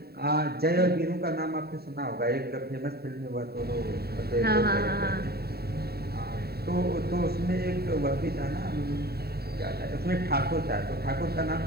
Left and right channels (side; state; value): left; late; 0.46 ms